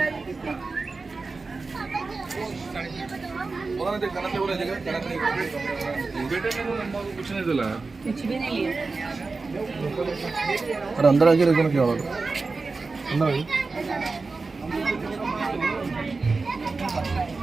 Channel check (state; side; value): quieter; left; 4.0 dB